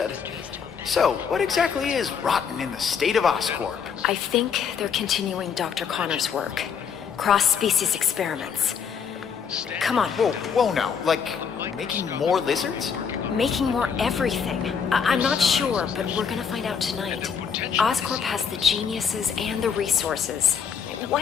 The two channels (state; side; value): quieter; right; 6.8 dB